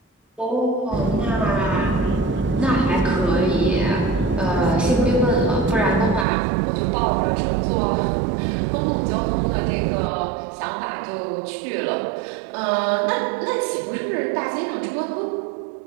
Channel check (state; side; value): drops out; left; at 6.2 s